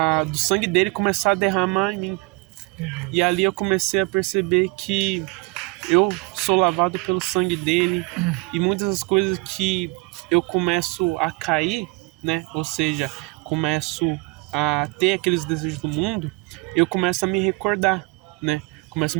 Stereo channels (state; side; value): quieter; left; 25.8 dB